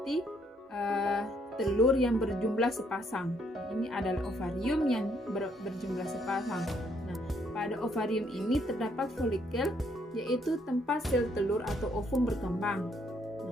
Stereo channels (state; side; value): normal; both; correlation 0.70